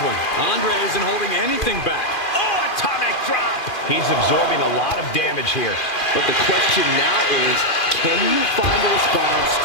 Andre isn't holding anything back. Oh, atomic drop. He's absorbing a lot of damage here. But the question now is, can you find a response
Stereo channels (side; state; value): right; late; 2.4 ms